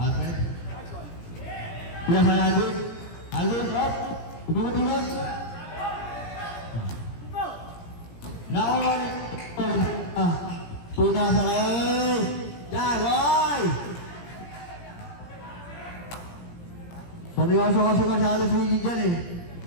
Pinasakay Alvin. Alvin, up. Umikot-ikot. Nakawal. Pinasakay. Jagoy! Seryoso kasi masyado si Gigi dyan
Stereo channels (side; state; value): right; late; 17 ms